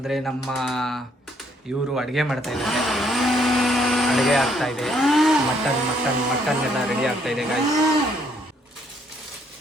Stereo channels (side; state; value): both; normal; correlation 0.68